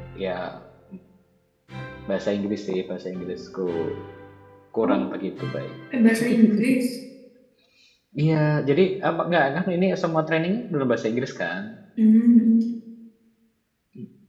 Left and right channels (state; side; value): identical; both; correlation 1.00